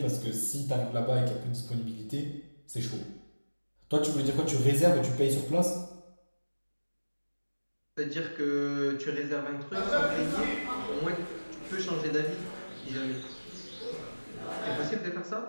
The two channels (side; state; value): both; inverted; correlation -1.00